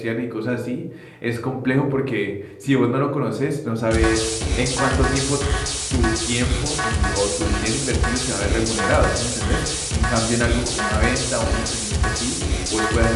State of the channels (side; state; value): both; identical; correlation 1.00